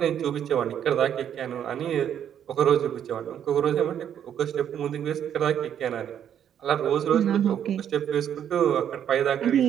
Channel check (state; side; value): quieter; left; 9.4 dB